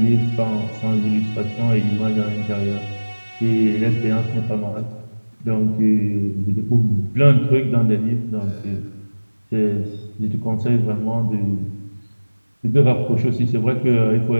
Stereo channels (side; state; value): both; inverted; correlation -1.00